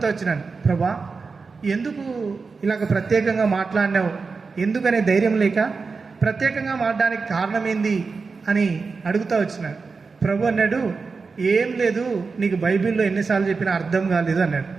వచ్చినాను, ప్రభా ఎందుకు ఇలాగ ప్రత్యేకంగా మాట్లాడినావు, ఎందుకనే ధైర్యం లేక ప్రత్యేకంగా మాట్లాడడానికి కారణం ఏంది అని అడుగుతూ వచ్చినాను. ప్రభు అన్నాడు, ఏం లేదు, నీకు బైబిల్లో ఎన్నిసార్లు చెప్పినా అర్థం కాలేదు అన్నాడు.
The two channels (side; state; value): left; quieter; 4.6 dB